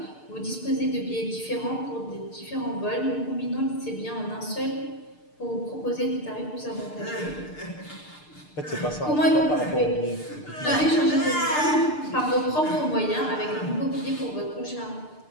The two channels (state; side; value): late; right; 6.7 ms